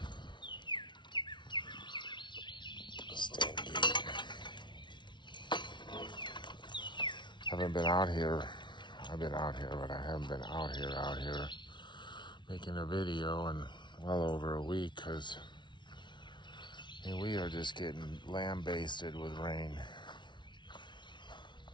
Haven't been out here. I've been out here, but I haven't been out here making a video in well over a week because we are just getting lambasted with rain.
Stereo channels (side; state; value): right; late; 0.23 ms